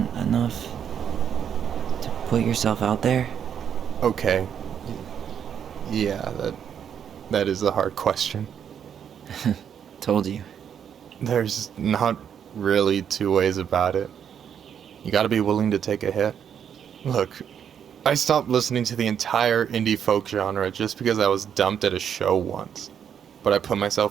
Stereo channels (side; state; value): left; quieter; 8.4 dB